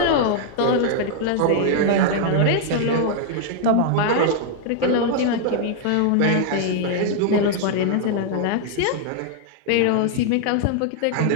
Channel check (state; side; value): different; both; correlation 0.00